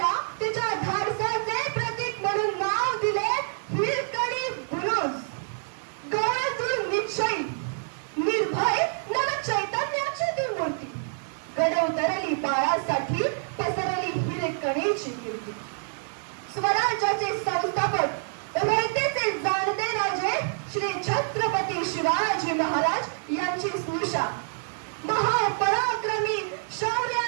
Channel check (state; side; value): silent; left; 58 dB below the other